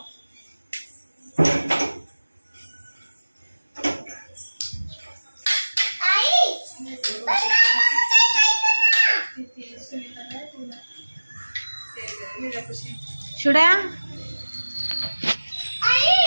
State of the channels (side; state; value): both; inverted; correlation -1.00